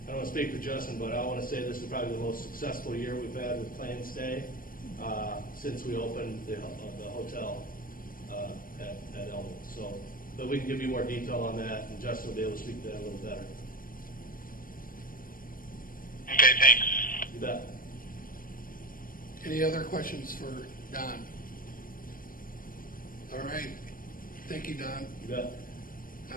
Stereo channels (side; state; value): right; late; 0.41 ms